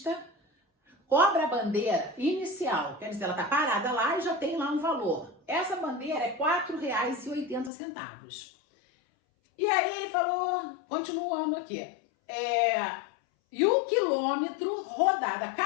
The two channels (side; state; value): right; drops out; at 7.7 s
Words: cobra a bandeira inicial. Quer dizer, ela tá parada lá e já tem lá um valor. Essa bandeira é R$ 4,80. E aí ele falou, continuando aqui. E o quilômetro rodado, a